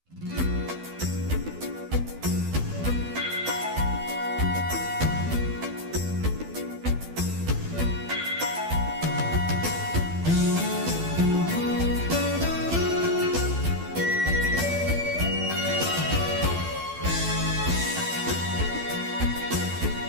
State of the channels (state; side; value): late; left; 12 ms